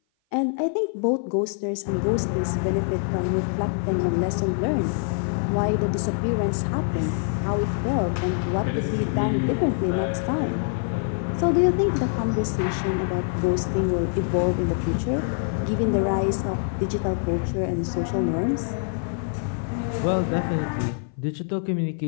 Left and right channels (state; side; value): silent; right; 56 dB below the other